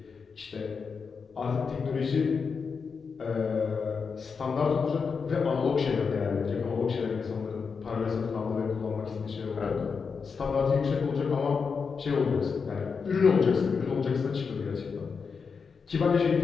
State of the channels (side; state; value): right; quieter; 5.5 dB